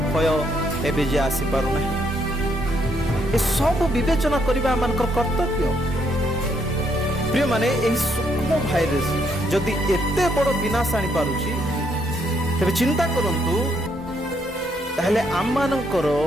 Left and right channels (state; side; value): normal; both; correlation 0.73